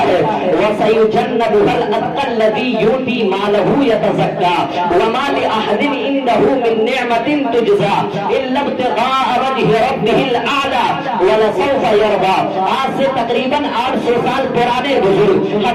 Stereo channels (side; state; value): both; identical; correlation 1.00